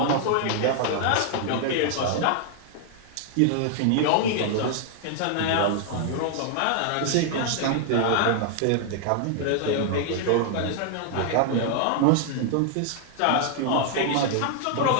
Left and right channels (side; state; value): both; different; correlation 0.00